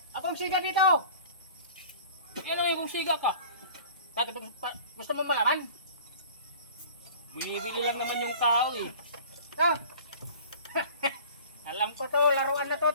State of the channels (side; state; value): both; inverted; correlation -0.44